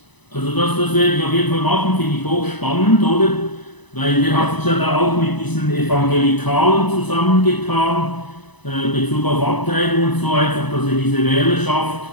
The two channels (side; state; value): right; late; 1.0 ms